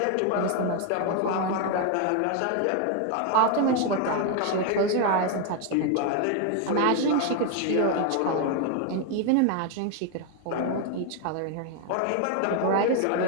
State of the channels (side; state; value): both; different; correlation 0.01